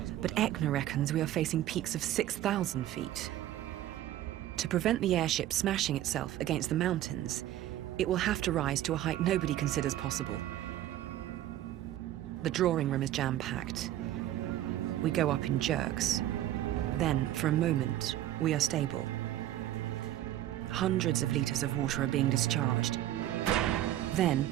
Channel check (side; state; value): left; quieter; 13.2 dB